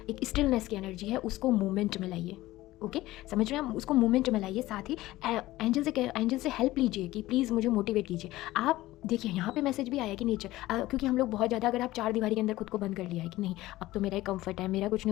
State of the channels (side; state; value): right; quieter; 17.1 dB